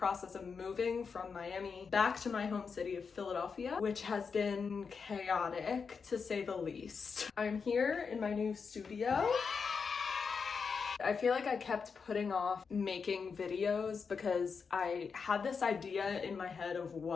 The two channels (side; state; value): right; quieter; 5.6 dB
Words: of moving from Miami back to my home city of Philadelphia, which has been chaotic to say the least. I'm here in my new studio. I feel like I kept putting off making videos because I had this idea in my head of